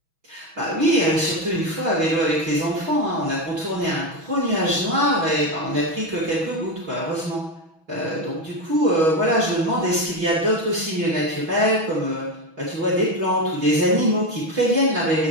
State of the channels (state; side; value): late; left; 6.2 ms